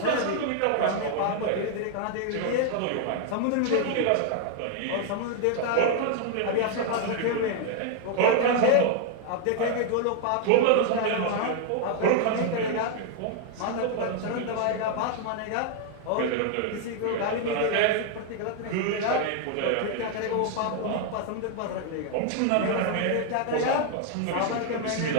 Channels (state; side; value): different; both; correlation 0.00